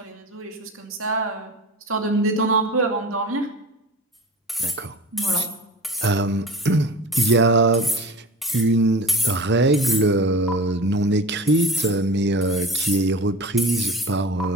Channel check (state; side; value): normal; both; correlation 0.35